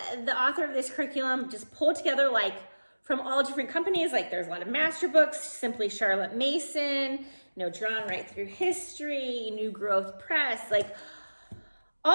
the author of this curriculum just pulled together like from all different companies. Like there's a lot of master books, Simply Charlotte Mason, Drawn Right Through History, New Growth Press, like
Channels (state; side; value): inverted; both; correlation -1.00